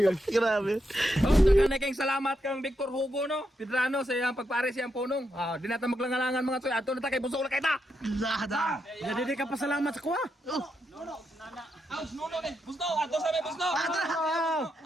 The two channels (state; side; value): normal; both; correlation 0.83